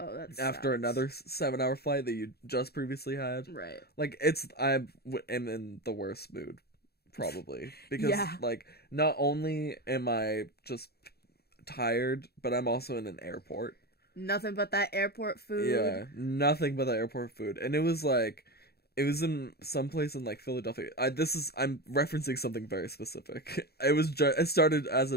that's After another 7-hour flight that you just previously had. Right. Like I am in the worst mood probably because Yeah. like not only am I just tired, but I'm also in an airport. Nothing but that airport food. Yeah, nothing but the airport food. And it was in some place in like Philadelphia. I'm referencing something very specific. It started as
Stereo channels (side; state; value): right; late; 0.46 ms